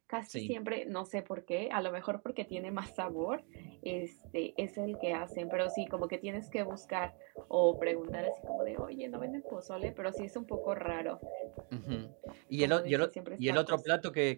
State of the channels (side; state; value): left; quieter; 37.3 dB